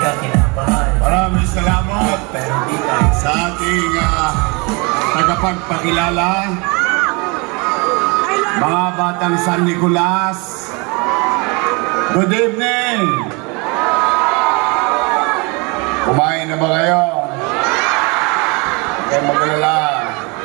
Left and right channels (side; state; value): left; quieter; 29.3 dB